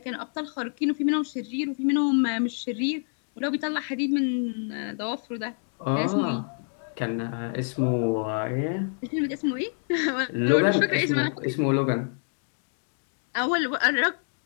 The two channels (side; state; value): right; silent; 55 dB below the other